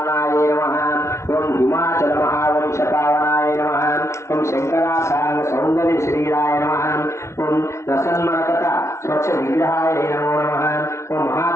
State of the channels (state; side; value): late; right; 0.13 ms